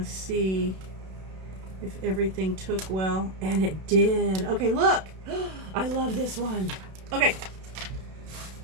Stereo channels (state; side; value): late; left; 32 ms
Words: to see if everything took well, and it did. Okay, look. I love this one. Okay,